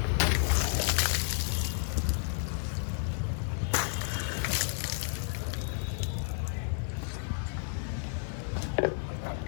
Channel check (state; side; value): silent; right; digital silence